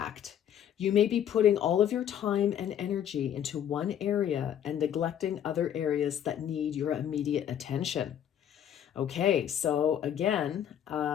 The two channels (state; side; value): quieter; right; 9.8 dB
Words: You may be putting all of your time and energy into one area and neglecting other areas that need your immediate attention. Okay, so again,